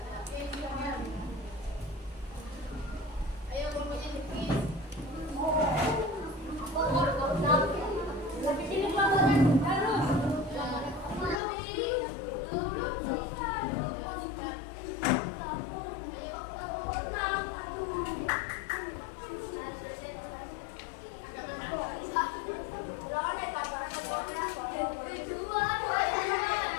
Oke, silakan. Ayo kelompoknya dipis. Di sini pelajaran harus.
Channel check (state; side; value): drops out; right; at 11.4 s